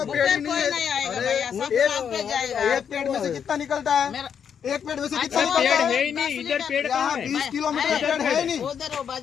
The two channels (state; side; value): quieter; right; 7.7 dB